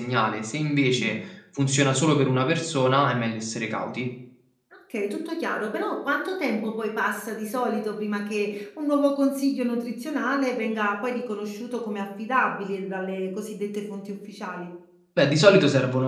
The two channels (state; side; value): identical; both; correlation 1.00